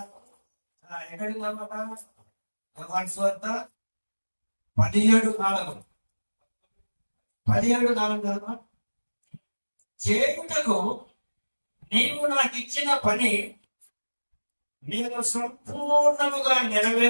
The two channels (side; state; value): both; inverted; correlation -1.00